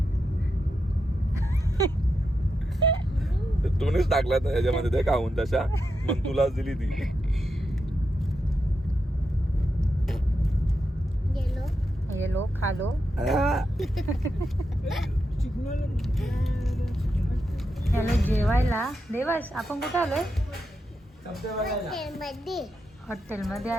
तूनेच टाकला तर ह्याच्यामध्ये ते खाऊन तशा मग तुलाच दिली ती गेलो येलो खालो याला जेवायला देवास आपण कुठे आलोय मध्ये हॉटेलमध्ये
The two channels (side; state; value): both; normal; correlation 0.86